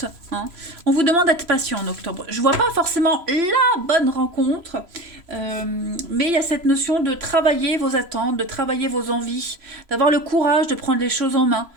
hein. On vous demande d'être patient en octobre. Je vois pas forcément la bonne rencontre, mais il y a cette notion de travailler vos attentes, de travailler vos envies, d'avoir le courage de prendre les choses en main.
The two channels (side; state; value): left; late; 3.0 ms